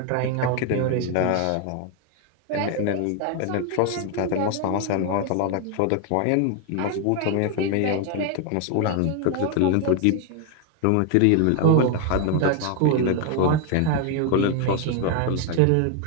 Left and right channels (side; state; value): both; different; correlation 0.01